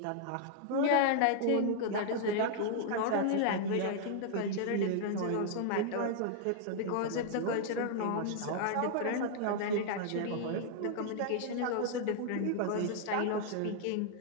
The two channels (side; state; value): both; different; correlation -0.01